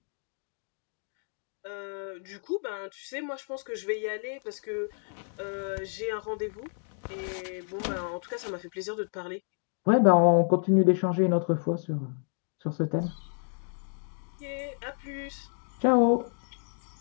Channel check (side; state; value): right; silent; 58 dB below the other